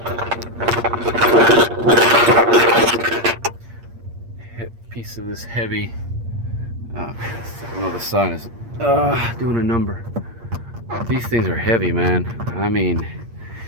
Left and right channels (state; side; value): late; left; 8.6 ms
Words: piece of this heavy. I know the sun is doing a number. These things are heavy, man. I mean,